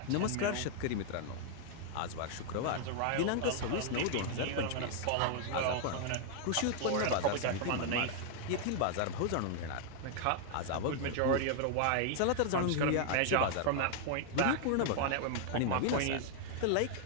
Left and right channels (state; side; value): different; both; correlation 0.00